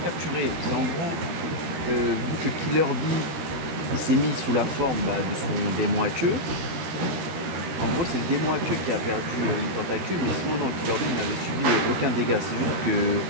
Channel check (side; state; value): left; late; 13 ms